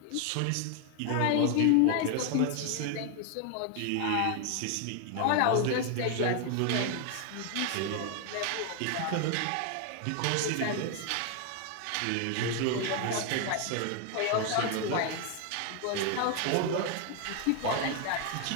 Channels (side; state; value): both; different; correlation 0.01